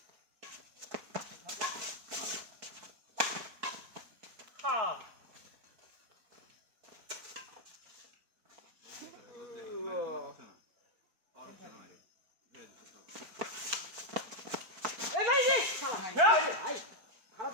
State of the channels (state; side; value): late; left; 4.5 ms